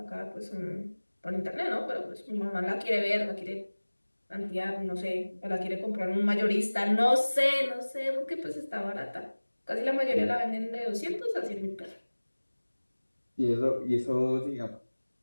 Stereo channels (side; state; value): both; inverted; correlation -1.00